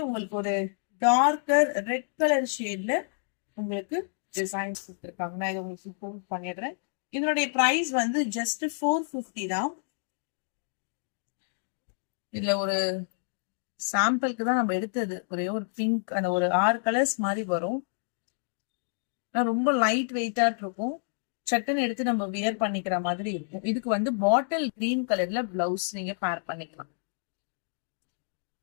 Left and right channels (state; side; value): silent; right; digital silence